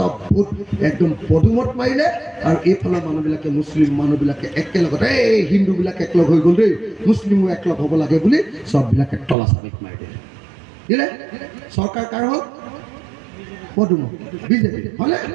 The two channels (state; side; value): drops out; left; at 9.3 s